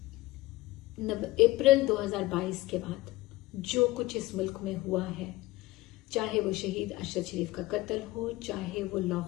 अप्रैल 2022 के बाद जो कुछ इस मुल्क में हुआ है, चाहे वो शहीद अशरफ शरीफ का कत्ल हो, चाहे वो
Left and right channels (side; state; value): right; quieter; 18.5 dB